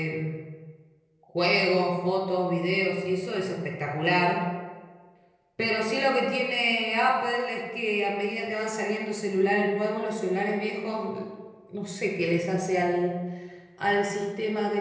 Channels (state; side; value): identical; both; correlation 1.00